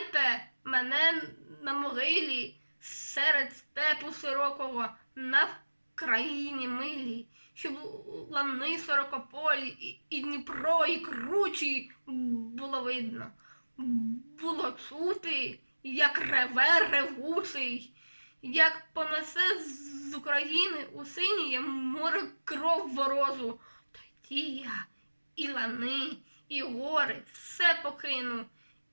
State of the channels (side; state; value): both; inverted; correlation -1.00